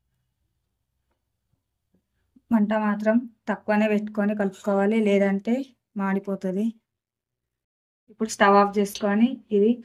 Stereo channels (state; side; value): identical; both; correlation 1.00